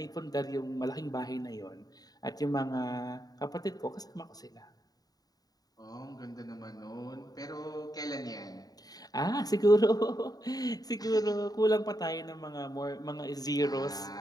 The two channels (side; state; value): right; late; 0.18 ms